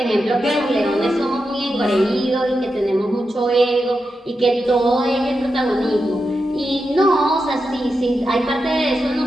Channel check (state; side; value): normal; both; correlation 0.88